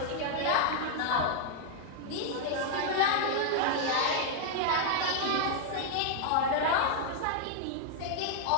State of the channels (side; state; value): both; different; correlation 0.00